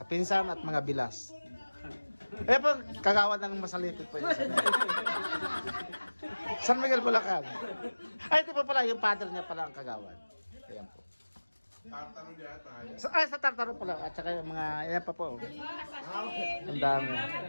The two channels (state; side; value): inverted; both; correlation -1.00